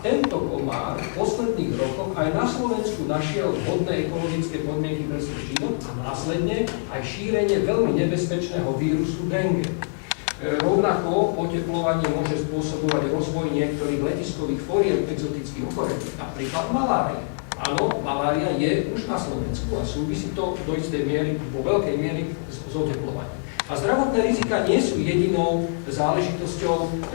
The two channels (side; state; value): right; silent; digital silence